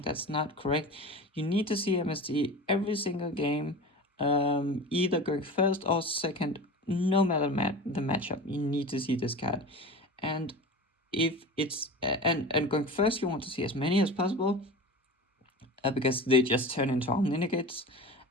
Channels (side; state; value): both; normal; correlation 0.33